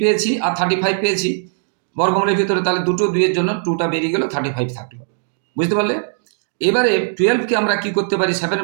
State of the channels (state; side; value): silent; left; digital silence